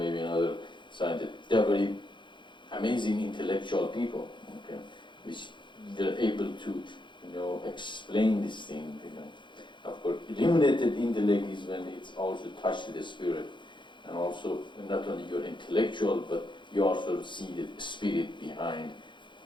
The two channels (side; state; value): right; late; 0.23 ms